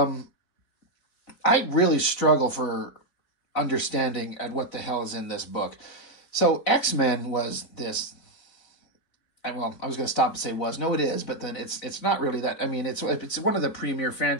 I really struggle for understanding at what the hell is in this book. So X-Men was this. Well, I was going to stop and say was. No, it is, but then it's not really that. I mean, it's one of the premier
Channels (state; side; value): late; right; 4.0 ms